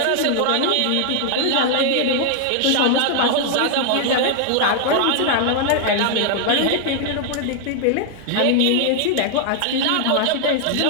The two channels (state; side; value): different; both; correlation 0.00